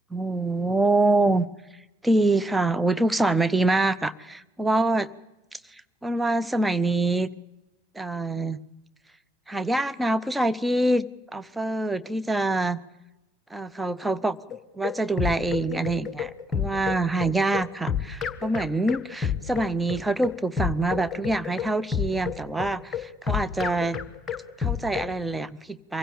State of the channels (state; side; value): normal; both; correlation 0.79